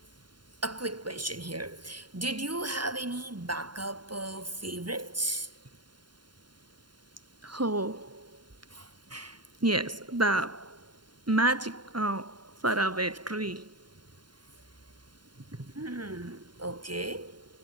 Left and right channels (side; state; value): left; late; 0.71 ms